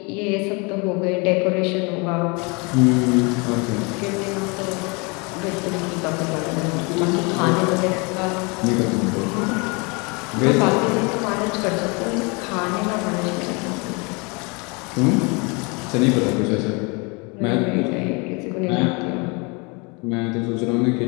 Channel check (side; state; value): right; quieter; 30.1 dB